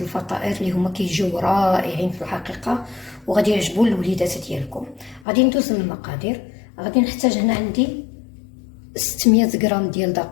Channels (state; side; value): drops out; right; at 5.2 s